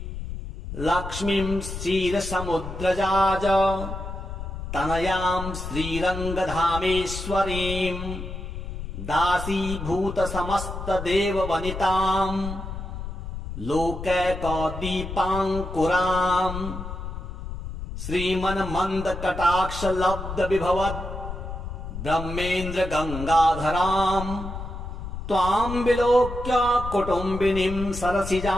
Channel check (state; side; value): noise; left; rumble, 8 dB below the sound